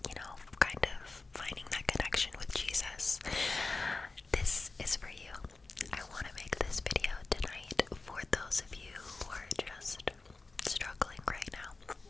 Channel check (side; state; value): right; quieter; 3.7 dB